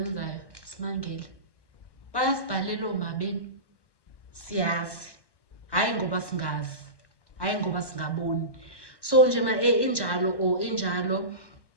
simangele, bayasibhalela omabeni, siyazi, hayi ngoba singazi, hayi ngoba singaboni. So nje injalo.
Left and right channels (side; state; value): right; late; 1.1 ms